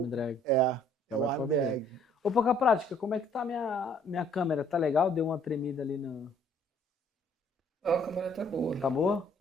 drag. Já vai para o drag. Ô, Pouca Prática, como é que tá minha câmera? Tá legal? Deu uma tremida ali no... Não, a câmera tá boa. Tá boa?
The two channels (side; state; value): both; normal; correlation 0.61